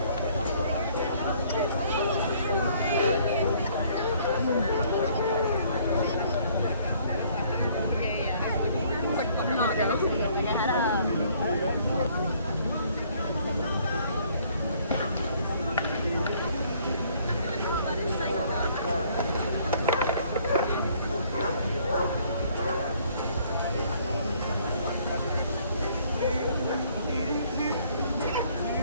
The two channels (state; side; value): inverted; both; correlation -0.61